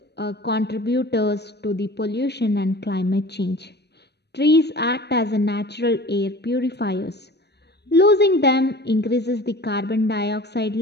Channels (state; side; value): late; right; 0.49 ms